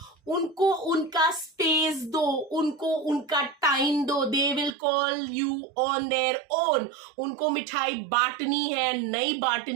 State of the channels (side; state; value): left; drops out; at 4.8 s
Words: उनको उनका स्पेस दो, उनको उनका टाइम दो। They will call you on their own. उनको मिठाई बांटनी है नहीं